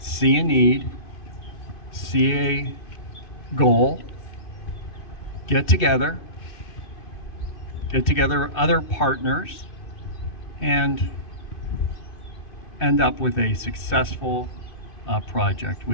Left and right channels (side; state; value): right; late; 2.5 ms